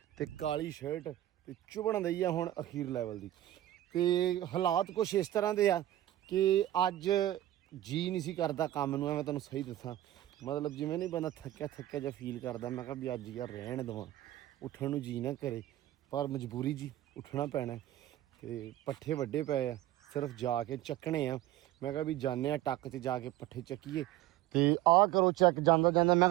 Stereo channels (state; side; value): quieter; left; 14.3 dB